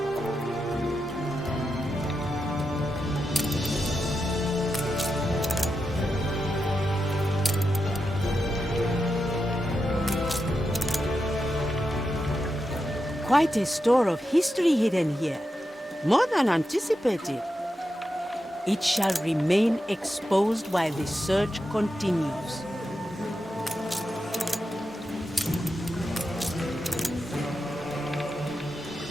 Quite a store of history hidden here. More than anticipated. It shall remain exposed while the search continues.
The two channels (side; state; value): both; normal; correlation 0.88